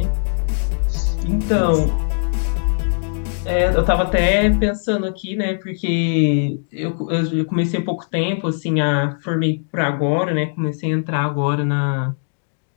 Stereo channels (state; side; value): silent; right; digital silence